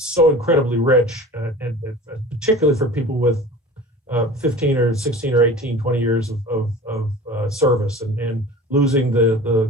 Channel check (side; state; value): both; normal; correlation 0.39